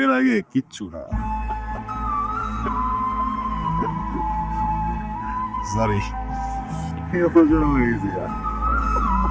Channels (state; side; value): identical; both; correlation 1.00